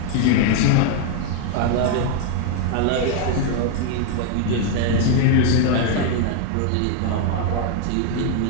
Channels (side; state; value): both; different; correlation 0.00